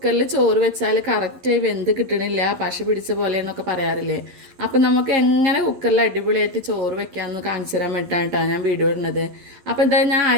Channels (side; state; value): left; late; 11 ms